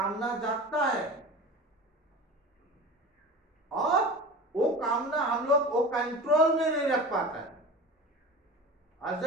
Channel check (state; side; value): normal; both; correlation 0.34